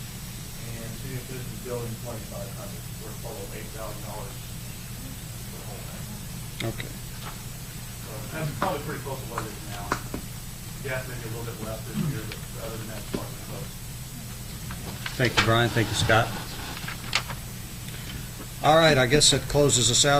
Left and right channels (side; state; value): both; identical; correlation 1.00